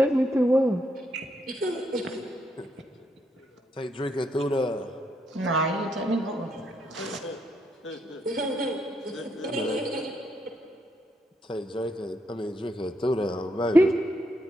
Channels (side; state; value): both; normal; correlation 0.78